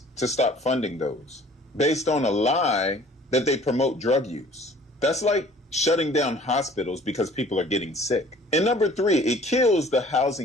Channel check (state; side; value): normal; both; correlation 0.52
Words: to stop funding those based on a lie that they promote drug use. That's like shutting down hospitals because people are getting sick. And number three, it kills the